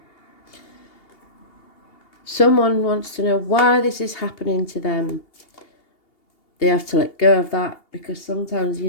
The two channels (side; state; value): right; late; 2.8 ms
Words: Someone wants to know why this is happening to them. They have to let go of that, because sometimes